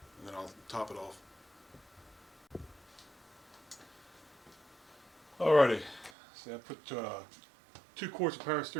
and then I'll top it off. Alrighty, so I put 2 quarts of power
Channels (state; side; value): drops out; left; at 6.1 s